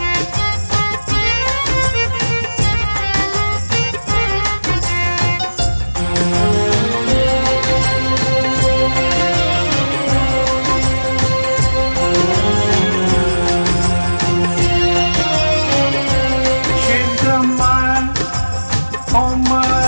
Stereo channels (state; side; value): inverted; both; correlation -1.00